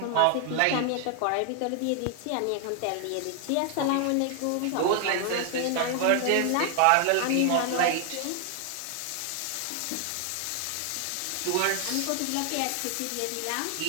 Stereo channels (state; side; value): different; both; correlation 0.00